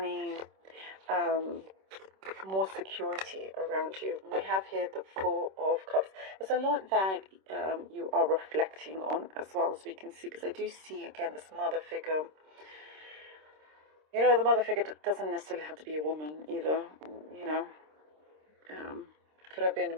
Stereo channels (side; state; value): left; late; 26 ms